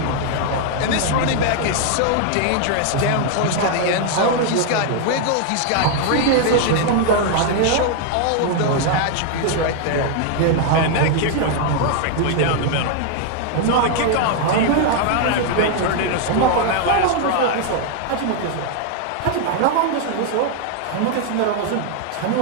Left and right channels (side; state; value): both; different; correlation 0.00